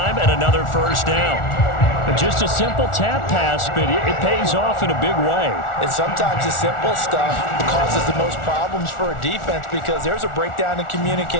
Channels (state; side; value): late; right; 1.4 ms